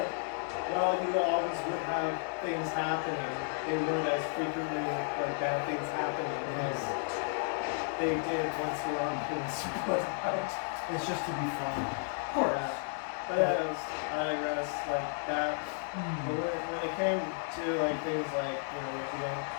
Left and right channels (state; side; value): silent; right; 56 dB below the other